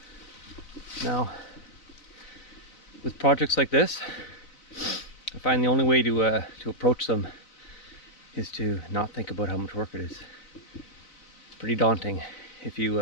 Now, with projects like this, I find the only way to approach them is to not think about how much work it is. It's pretty daunting if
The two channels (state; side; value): late; right; 4.0 ms